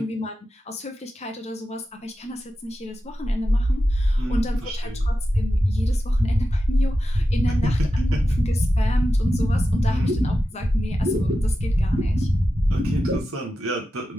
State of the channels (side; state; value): both; normal; correlation 0.91